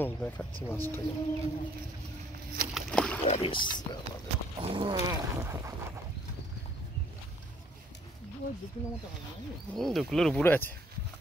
দেখাচ্ছি মাছটাকে। 2 কিলো মতো হবে নাকি? 2 কিলোর উপরে আছে।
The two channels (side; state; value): both; normal; correlation 0.62